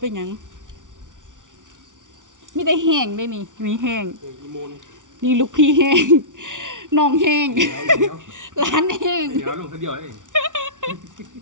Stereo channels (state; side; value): late; left; 0.87 ms